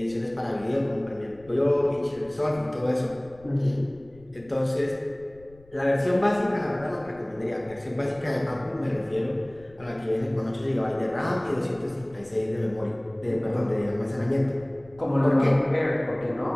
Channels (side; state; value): left; noise; rumble, 25 dB below the sound